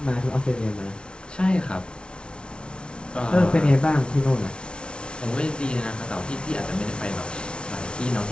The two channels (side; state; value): right; late; 0.057 ms